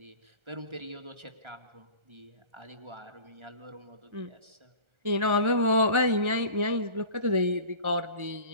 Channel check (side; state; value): left; late; 1.4 ms